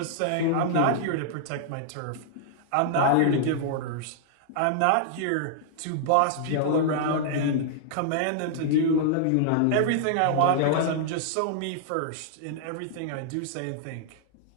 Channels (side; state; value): both; different; correlation -0.01